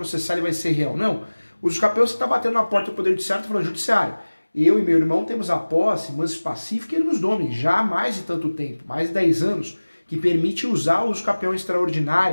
e vai ser real, não. O uso capião você está batendo na porta do Poder Judiciário e falando, judiciário, eu e meu irmão temos a posse, manso pacífica e ele nos domine, já há mais de tanto tempo, mais de 10 anos, que permite usar o uso capião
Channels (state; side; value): inverted; both; correlation -1.00